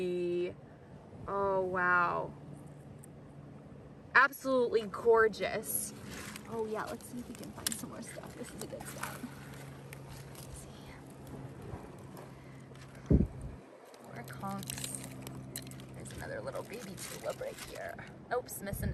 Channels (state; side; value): identical; both; correlation 1.00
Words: Oh, wow. Absolutely gorgeous. Oh yeah, let's see if we can find some more stuff. This is a good spot. Let's see. More conchs. There's another little baby tulip right here. Oops, missing